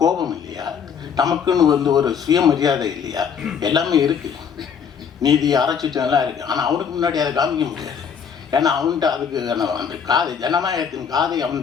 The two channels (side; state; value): right; quieter; 7.1 dB